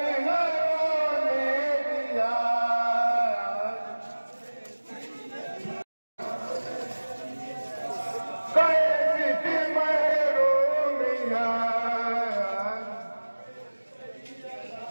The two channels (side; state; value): both; inverted; correlation -1.00